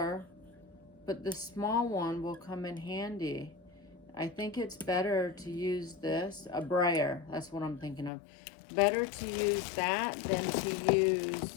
but the small one will come in handy. I think it's better to use this, a brayer. That's what I'm thinking of. Better to use that than to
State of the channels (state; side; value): drops out; right; at 8.1 s